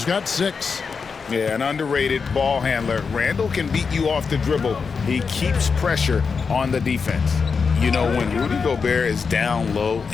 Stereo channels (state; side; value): quieter; right; 5.4 dB